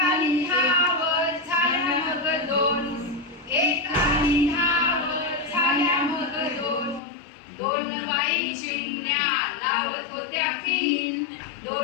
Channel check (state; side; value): drops out; right; at 7.0 s